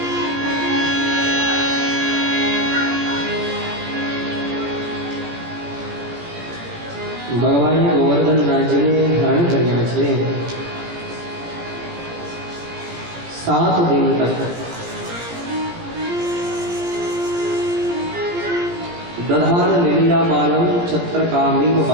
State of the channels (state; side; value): late; left; 17 ms